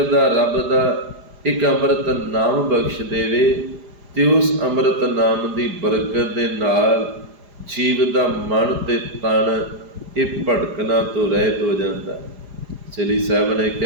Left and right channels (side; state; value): left; late; 4.9 ms